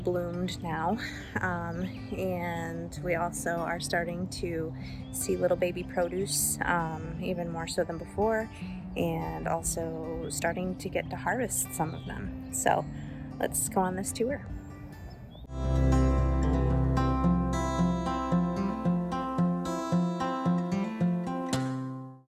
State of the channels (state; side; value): identical; both; correlation 1.00